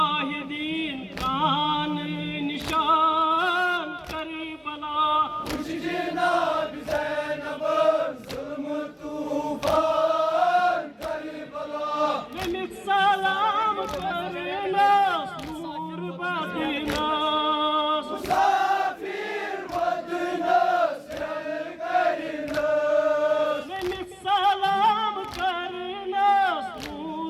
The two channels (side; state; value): both; identical; correlation 1.00